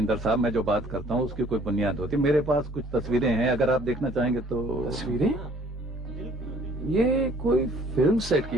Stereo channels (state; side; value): normal; both; correlation 0.56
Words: साहब। मैं जो बात करता हूँ उसकी कोई बुनियाद होती है। मेरे पास कुछ तस्वीरें हैं, अगर आप देखना चाहेंगे तो। तस्वीरें? ये कोई फिल्म सेट की